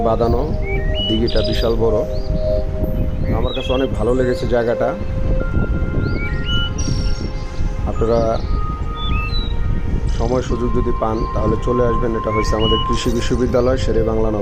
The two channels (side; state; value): both; identical; correlation 1.00